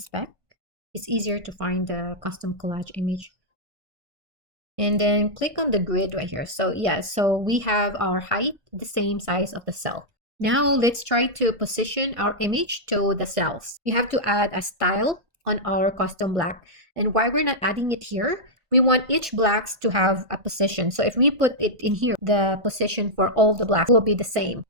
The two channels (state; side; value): late; left; 1.5 ms